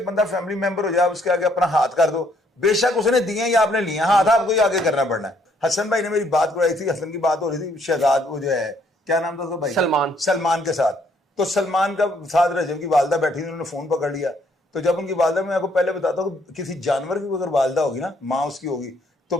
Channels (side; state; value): both; normal; correlation 0.67